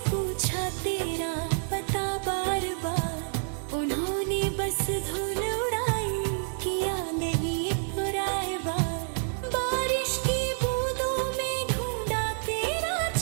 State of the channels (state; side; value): silent; left; digital silence